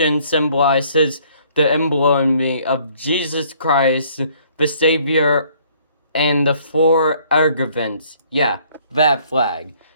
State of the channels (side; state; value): both; inverted; correlation -0.61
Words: symbolizes the emblem of Jesus Christ, the Savior, and the 4 arguments. Yeah, that flag.